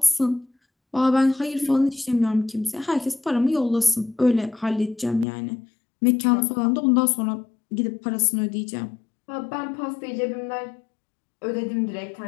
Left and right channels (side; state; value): right; drops out; at 5.2 s